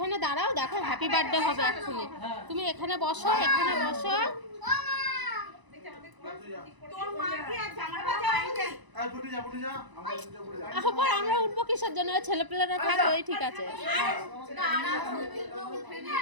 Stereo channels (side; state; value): left; late; 1.0 ms